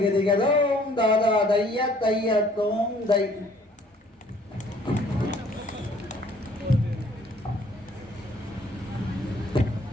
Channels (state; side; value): normal; both; correlation 0.58